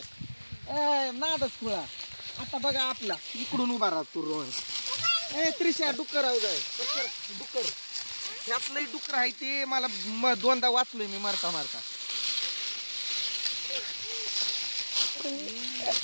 नादच खुळा. आता बघा आपला इकडून उभा राहतो रोहन. त्रिशा डुक्कर आव जाय डुक्कर, ह्यातलंही डुक्कर आहे ते. मला दोनदा वाचलोय मी मारता मारता.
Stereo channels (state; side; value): inverted; both; correlation -1.00